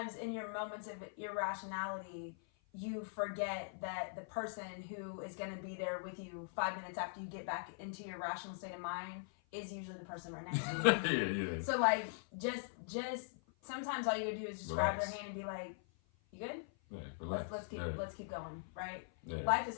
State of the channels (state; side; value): silent; right; 50 dB below the other